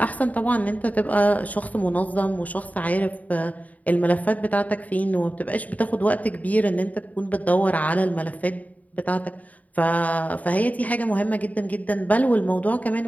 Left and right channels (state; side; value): late; right; 0.073 ms